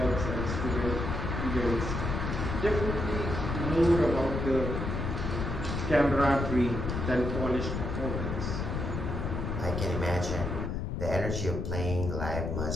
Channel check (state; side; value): noise; left; rumble, 2 dB below the sound